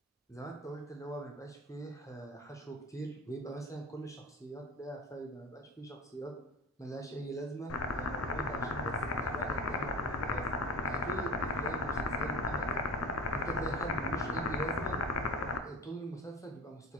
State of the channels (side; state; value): both; normal; correlation 0.38